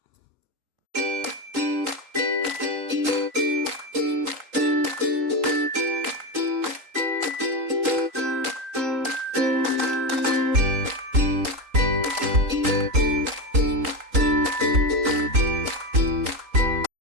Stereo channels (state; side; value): late; left; 3.8 ms